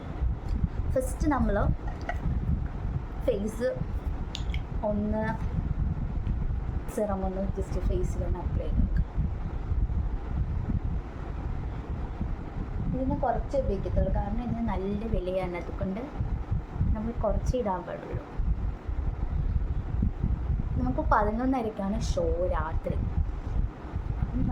ഫസ്റ്റ് നമ്മൾ ഫേസ് ഒന്ന് സിറം ഒന്ന് ജസ്റ്റ് ഫേസിലൊന്ന് അപ്ലൈ ചെയ്ത് നോക്കാം. ഇതിന് കുറച്ച് ഉപയോഗിക്കത്തുള്ളൂ, കാരണം ഇതിന് നല്ല വിലയാണ്. അതുകൊണ്ട് നമ്മൾ കുറച്ച് ഇടാൻ പാടുള്ളൂ. നമുക്ക് 11:30 ഷോ രാത്രി.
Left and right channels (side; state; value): both; identical; correlation 1.00